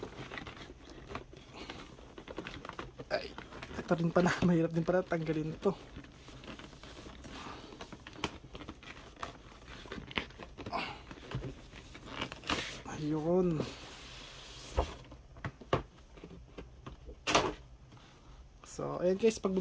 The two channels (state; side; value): identical; both; correlation 1.00